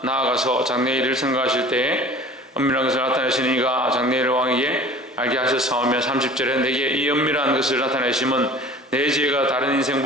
나아가서 장래일을 생각하실 때에 은밀한 것을 나타내시는 이가 장래일 왕에게 알게 하셨사오며 30절에 내게 이 은밀한 것을 나타내심은 내 지혜가 다른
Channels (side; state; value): both; normal; correlation 0.43